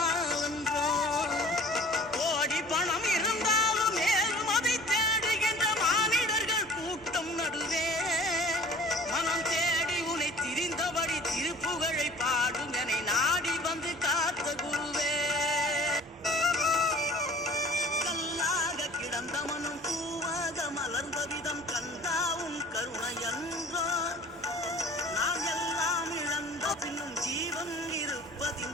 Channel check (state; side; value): normal; both; correlation 0.46